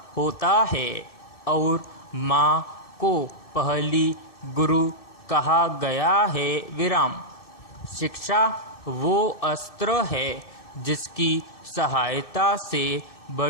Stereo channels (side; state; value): right; late; 2.6 ms